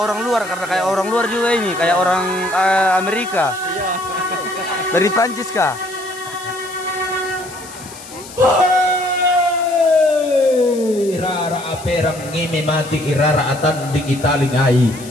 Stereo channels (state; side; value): noise; left; hiss, 16 dB below the sound